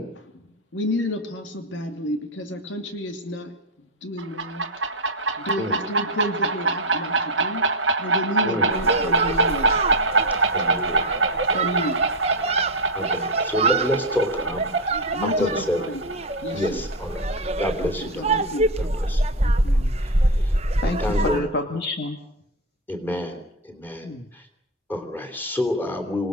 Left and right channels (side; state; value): both; normal; correlation 0.06